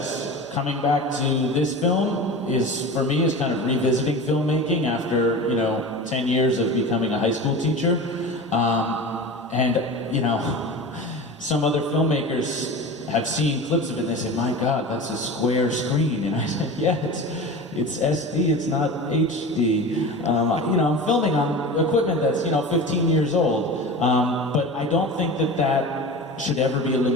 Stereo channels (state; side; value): normal; both; correlation 0.31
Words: Coming back to this film for me, is kind of revisiting filmmaking after, 10 years of becoming a high school teacher. Some other filmmakers have seen clips of it and they say, my God, that's a square screen. And I said, yeah, it's SD, it's not HD. I'm filming on equipment that's, 15 years old. But I don't think that should ever be a